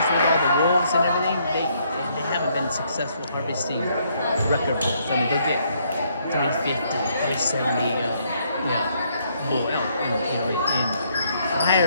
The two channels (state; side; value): inverted; both; correlation -0.70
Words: with all the wolves and everything, they haven't been successful harvesting record bulls. I mean, they'll get 350, 370, bull elk. And